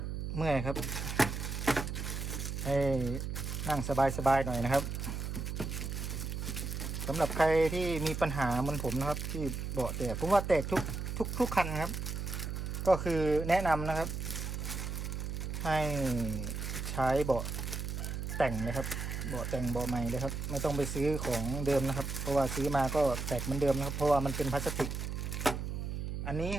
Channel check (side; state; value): right; noise; hum, 4 dB below the sound